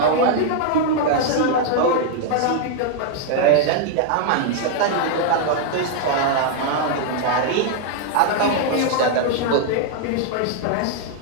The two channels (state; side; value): different; both; correlation 0.00